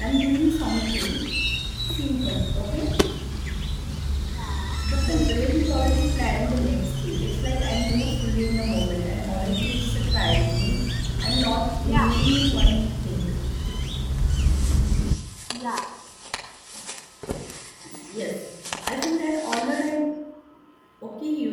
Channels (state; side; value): identical; both; correlation 1.00